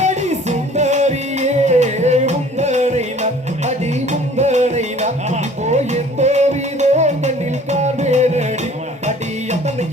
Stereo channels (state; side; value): normal; both; correlation 0.51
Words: சுந்தரியே முந்தனை அடி முந்தனை போயின் போவிதோ கண்ணில் கார்வேனடி அடி